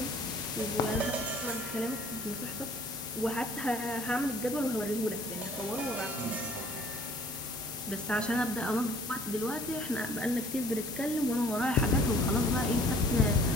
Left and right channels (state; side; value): normal; both; correlation 0.54